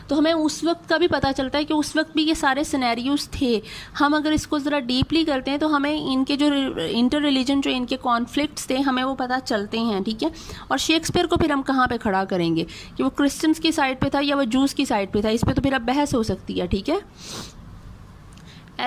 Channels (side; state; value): both; identical; correlation 1.00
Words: तो हमें उस वक्त का भी पता चलता है कि उस वक्त भी ये सारे सिनेरियोज थे। हम अगर इसको ज़रा डीपली करते हैं तो हमें इनके जो इंटर रिलीजन जो इनके कॉन्फ्लिक्ट्स थे हमें वो पता चलते हैं, ठीक है। और शेक्सपियर को फिर हम कहाँ पे खड़ा करेंगे कि वो क्रिश्चियंस की साइड पे था या वो जूस की साइड पे था, इस पर तो फिर अब बहस हो सकती है, ठीक है।